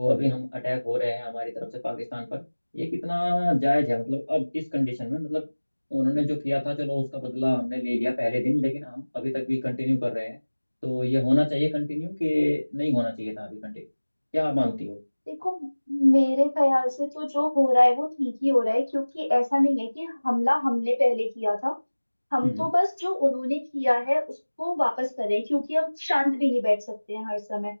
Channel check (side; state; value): both; inverted; correlation -1.00